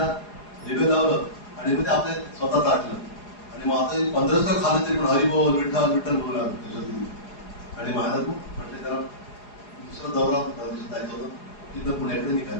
दिवे लावलं आणि मग ते आपल्या स्वतःच आटलं. आणि माताजी 15 खाल्लं तरी पण हरी बोल विठ्ठल विठ्ठल बोलू लागलं त्याच्यात. आणि महाराज म्हटले त्याला दुसरा दौरा जायचं होतं, तिथं पुण्याकडे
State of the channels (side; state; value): right; late; 4.8 ms